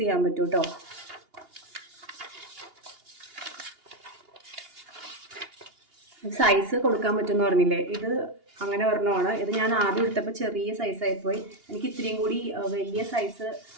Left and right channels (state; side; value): late; left; 2.8 ms